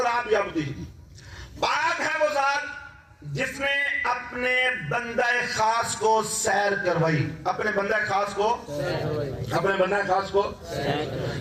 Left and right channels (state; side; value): identical; both; correlation 1.00